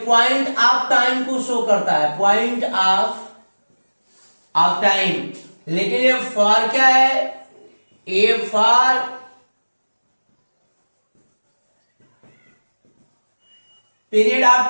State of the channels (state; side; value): inverted; both; correlation -1.00